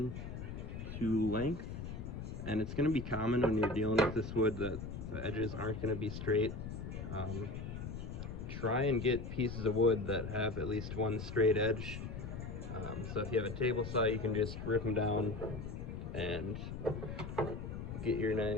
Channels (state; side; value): noise; left; rumble, 7 dB below the sound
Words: to length, and it's going to be common when you're dealing with this wood that the edges aren't going to be straight. Try and get pieces of wood that have at least one straight edge. So if you have a table saw, you can just rip them down and get your